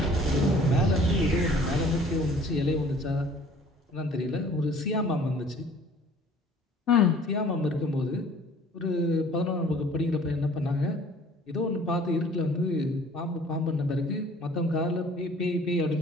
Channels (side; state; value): both; normal; correlation 0.52